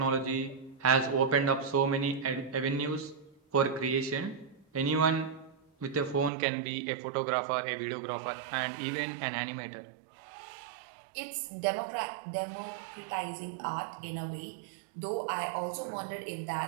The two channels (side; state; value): left; drops out; at 6.3 s